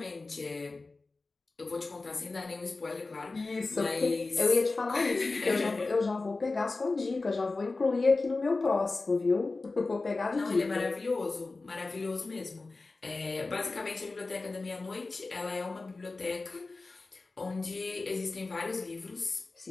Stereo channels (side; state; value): right; quieter; 3.6 dB